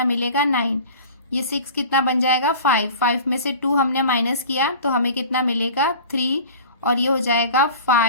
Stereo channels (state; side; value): inverted; both; correlation -0.40